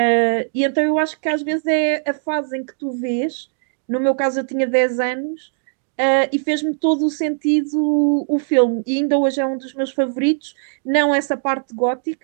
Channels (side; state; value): left; silent; digital silence